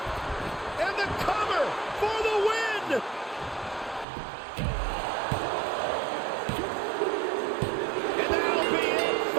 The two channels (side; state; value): left; drops out; at 4.0 s